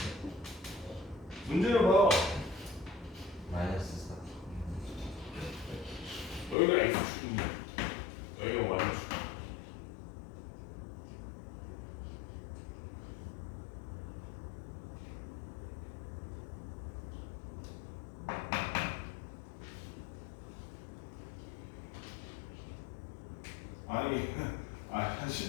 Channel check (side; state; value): right; drops out; at 6.6 s